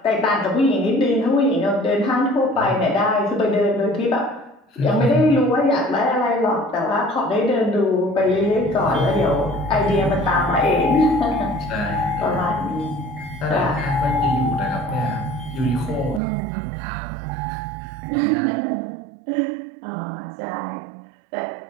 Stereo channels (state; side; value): drops out; left; at 16.2 s